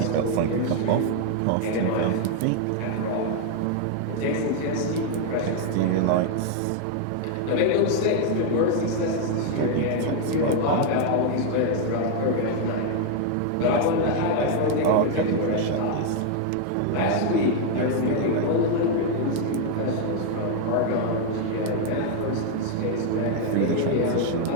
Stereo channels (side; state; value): both; different; correlation 0.00